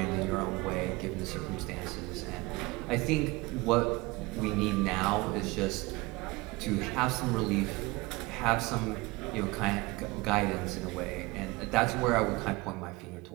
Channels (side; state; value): left; quieter; 22.7 dB